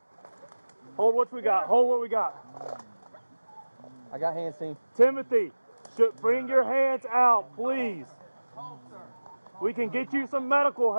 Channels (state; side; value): inverted; both; correlation -1.00